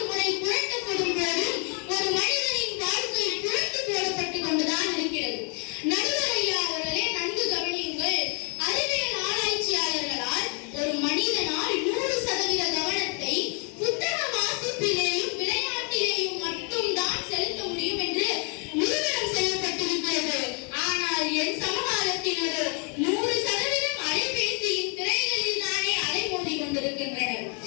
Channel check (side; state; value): right; quieter; 36.9 dB